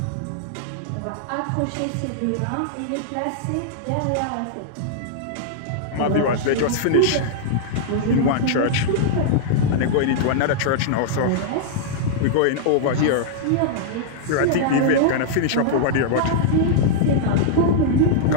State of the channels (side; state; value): both; different; correlation -0.01